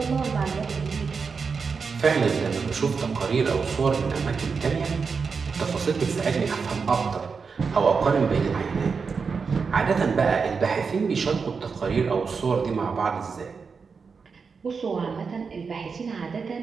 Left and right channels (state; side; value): quieter; left; 5.3 dB